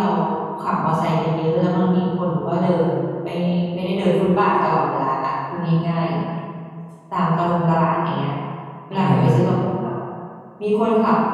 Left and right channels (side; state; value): both; identical; correlation 1.00